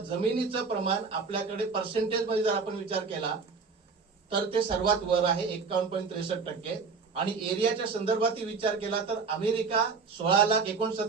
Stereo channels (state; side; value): quieter; left; 5.0 dB